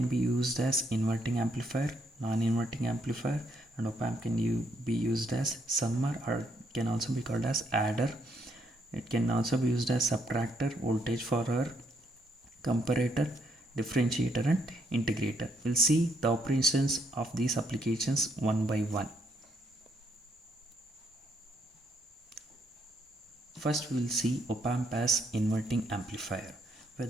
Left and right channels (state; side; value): normal; both; correlation 0.73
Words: be used as inverting amplifier, non-inverting amplifier, and op-amp can be used as summer, or can also be called as adder. It can also be used as subtractor, voltage follower, comparator, differentiator, and integrator. We'll see the operations of these applications one by one. First we will see op-amp as inverting amplifier, where